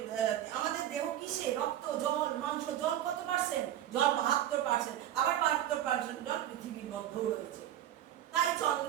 দেহ কিসে, রক্ত, জল, মাংস। জল কত পার্সেন্ট? জল 72%, আবার 72% জল পৃথিবীর মধ্যেও রয়েছে। তাই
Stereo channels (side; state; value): left; quieter; 11.9 dB